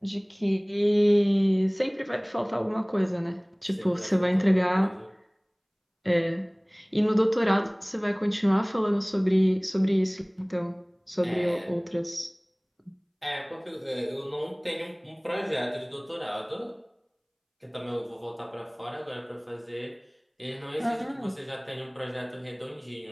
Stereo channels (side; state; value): both; identical; correlation 1.00